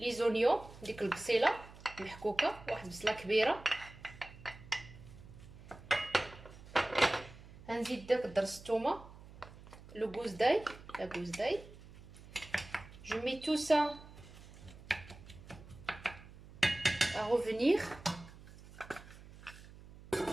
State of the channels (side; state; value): right; noise; hum, 18 dB below the sound